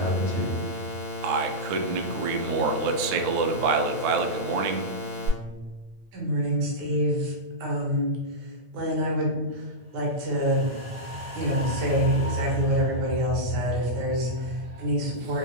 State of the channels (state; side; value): late; left; 9.6 ms